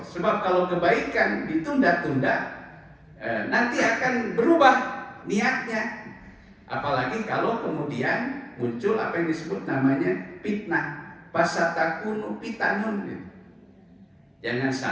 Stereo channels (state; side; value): identical; both; correlation 1.00